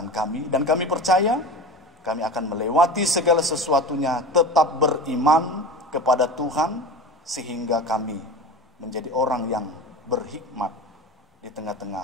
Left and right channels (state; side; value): normal; both; correlation 0.31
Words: kami. Dan kami percaya kami akan melewati segala sesuatunya, tetap beriman kepada Tuhan, sehingga kami menjadi orang yang berhikmat di